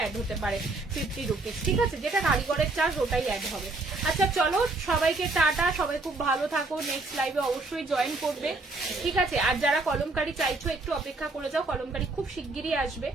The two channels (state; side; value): quieter; left; 3.2 dB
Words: হতে পারে 50 রুপিস, ঠিক আছে, যেটা কারিগরের চার্জ ওটাই অ্যাড হবে। আচ্ছা চলো সবাইকে টাটা, সবাই খুব ভালো থাকো, নেক্সট লাইভে অবশ্যই জয়েন করবে, ঠিক আছে। আর যারা কলমকারি চাইছো একটু অপেক্ষা করে যাও, কলমকারি খুব শিগগিরই আসবে,